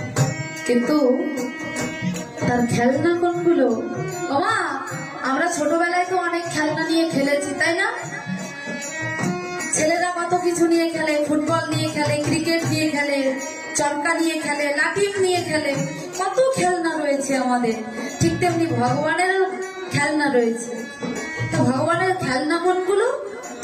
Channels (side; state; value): both; identical; correlation 1.00